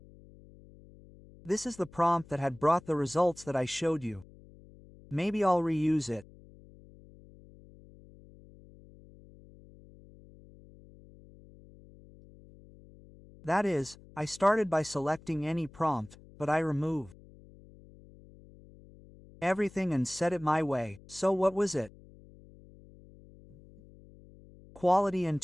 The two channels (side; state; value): left; noise; hum, 23 dB below the sound